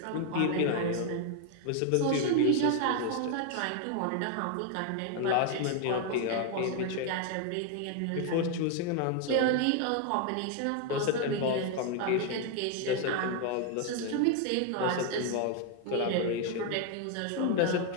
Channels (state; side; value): different; both; correlation 0.00